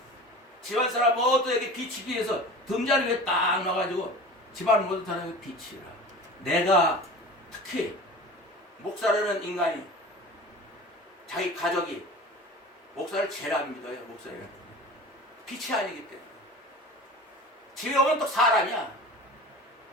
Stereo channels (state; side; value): normal; both; correlation 0.37